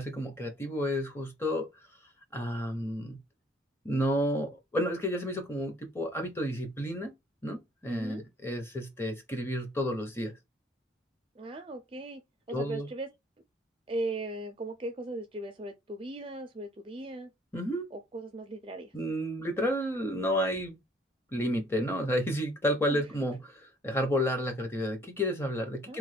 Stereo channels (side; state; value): both; normal; correlation 0.59